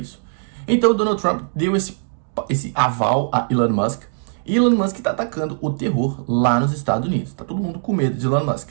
Então o Donald Trump deu esse aval a Elon Musk. E Elon Musk está atacando o terror lá nos Estados Unidos. Tá todo mundo com medo de Elon Musk.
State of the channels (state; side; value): silent; left; 65 dB below the other